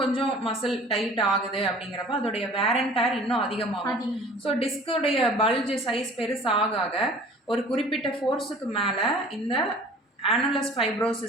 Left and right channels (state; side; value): normal; both; correlation 0.47